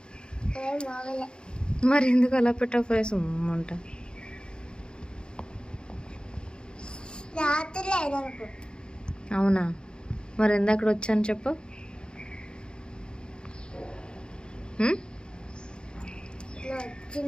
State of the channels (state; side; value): late; right; 0.050 ms